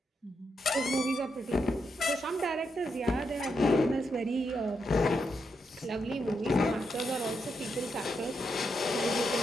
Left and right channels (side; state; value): both; normal; correlation 0.82